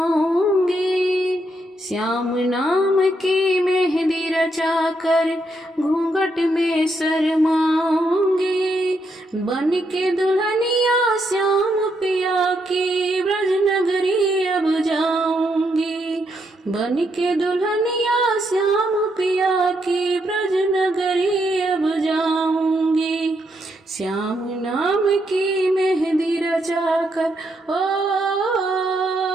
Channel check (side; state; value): both; normal; correlation 0.78